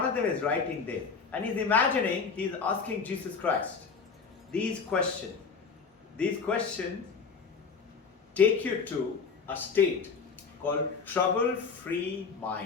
of them is writing this. And he's imagining, he's asking Jesus Christ these questions. These questions take you to a state called trouble-free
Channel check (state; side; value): quieter; right; 5.4 dB